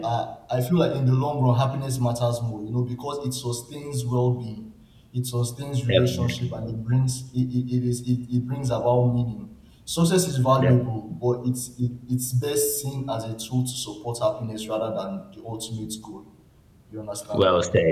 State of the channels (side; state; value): both; identical; correlation 1.00